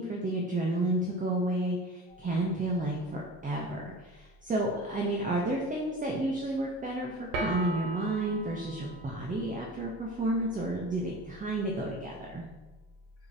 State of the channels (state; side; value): normal; both; correlation 0.37